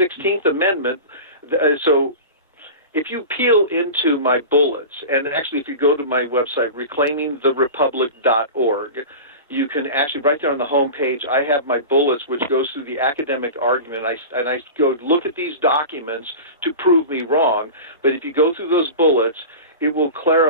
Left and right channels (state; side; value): inverted; both; correlation -0.31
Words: Amendment, so if you peel into my bullets, and actually if you go to my website, reclaimingtherepublic.org, you can actually, right there on the home page, I have my bullets, which goes through the academic argument. And I go look at these documents to prove me wrong. But if you go through those bullets, it will